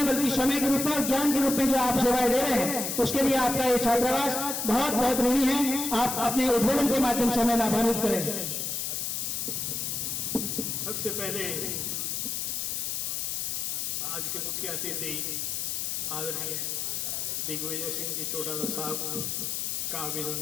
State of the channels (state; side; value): noise; left; hiss, 2 dB below the sound